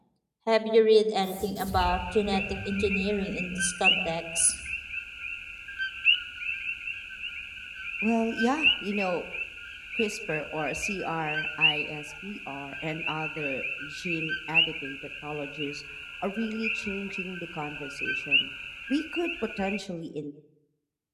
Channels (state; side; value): identical; both; correlation 1.00